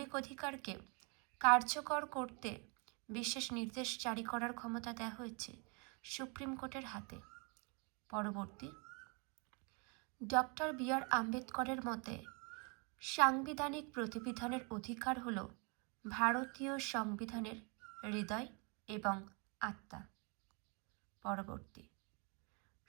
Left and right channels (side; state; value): left; quieter; 34.1 dB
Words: অধিকারকে কার্যকর করতে বিশেষ নির্দেশ জারি করার ক্ষমতা দেওয়া হয়েছে সুপ্রিম কোর্টের হাতে। পরবর্তী, ডক্টর বি.আর. আম্বেদকরের মতে সাংবিধানিক প্রতিবিধানের অধিকার হল ভারতীয় সংবিধানের হৃদয় এবং আত্মা। পরবর্তী,